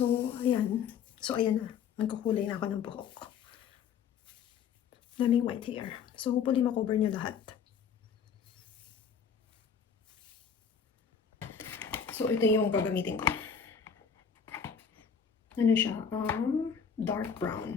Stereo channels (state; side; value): quieter; right; 6.9 dB